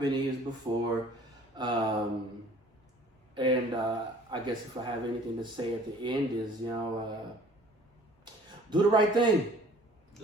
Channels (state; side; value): normal; both; correlation 0.52